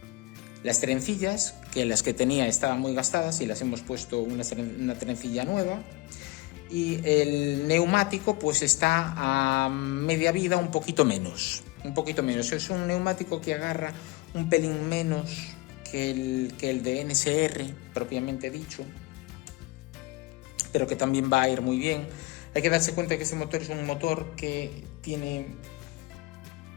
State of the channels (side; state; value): right; quieter; 21.3 dB